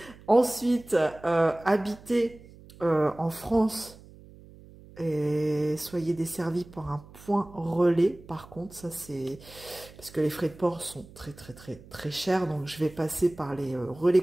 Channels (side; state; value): right; noise; hum, 21 dB below the sound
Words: Ensuite, habiter en France et soyez desservis par un point relais. Par contre, ça c'est parce que les frais de port sont très chers, donc je vais passer par les